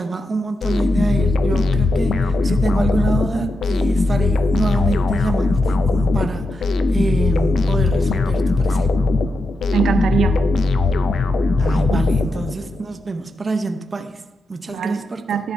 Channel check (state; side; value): normal; both; correlation 0.87